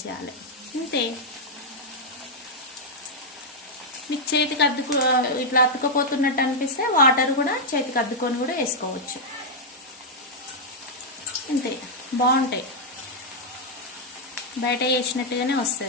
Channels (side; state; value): both; normal; correlation -0.03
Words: అంతే. మీకు చేతికి ఇట్లా అతుకపోతున్నట్టు అనిపిస్తే వాటర్ కూడా చేతికి అద్దుకొని కూడా వేసుకోవచ్చు. అంతే, బాగుంటాయి. బయట వేసినట్టుగానే